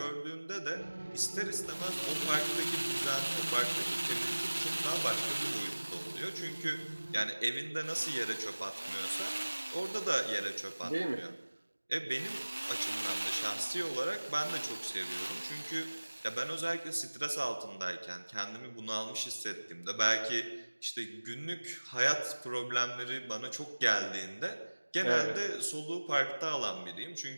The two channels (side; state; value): both; inverted; correlation -1.00